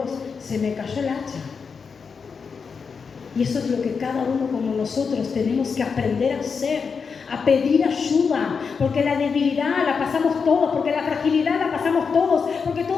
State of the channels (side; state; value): right; quieter; 5.6 dB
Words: se me cayó el hacha. Y eso es lo que cada uno como nosotros tenemos que aprender a hacer, a pedir ayuda, porque la debilidad la pasamos todos, porque la fragilidad la pasamos todos, porque